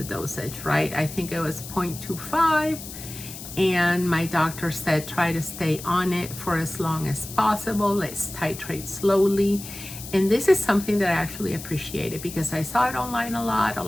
dosage, right? I think it was 0.25, and my doctor said try to stay on it for as long as possible. Let's titrate slowly. And this is something that I actually appreciated, because I saw it online a lot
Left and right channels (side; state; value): left; noise; hiss, 12 dB below the sound